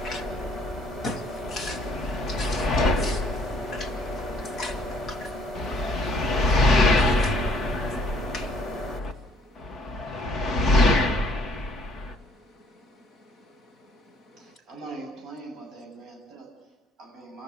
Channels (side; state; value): both; normal; correlation 0.61